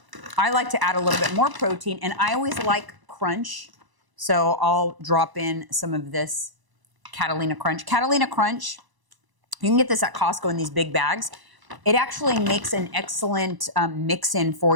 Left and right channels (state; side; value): late; left; 1.0 ms